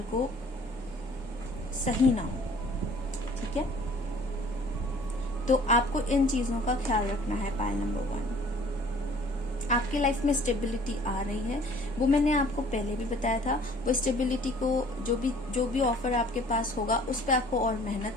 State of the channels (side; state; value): both; normal; correlation 0.52